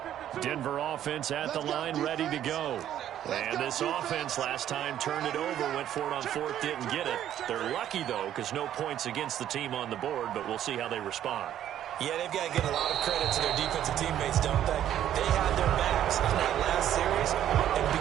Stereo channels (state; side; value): quieter; left; 11.2 dB